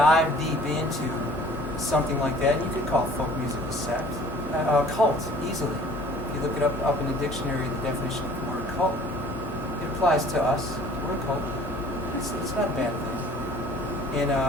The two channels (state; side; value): normal; both; correlation 0.51